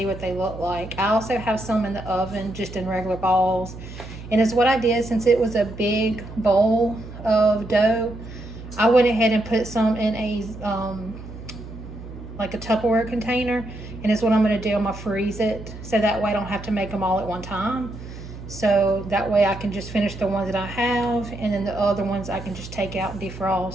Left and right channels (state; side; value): noise; right; hum, 13 dB below the sound